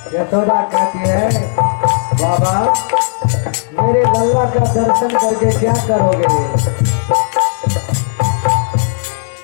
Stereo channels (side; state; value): right; silent; digital silence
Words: यशोदा कहती है बाबा मेरे लल्ला का दर्शन करके क्या करोगे?